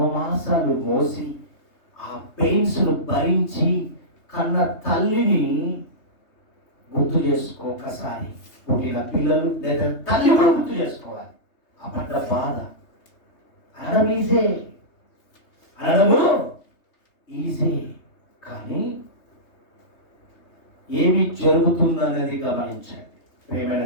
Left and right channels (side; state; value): right; late; 3.2 ms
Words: మాసాలు మోసి ఆ పెయిన్స్ను భరించి కన్న తల్లిని గుర్తు చేసుకో. ఒకసారి పుట్టిన పిల్లలు లేదా తల్లి కూడా గుర్తు చేసుకోవాలి. ఆ పడ్డ బాధ అనడము ఈజీ, కానీ ఏమి జరుగుతుందనేది గమనించండి. ప్రియమైన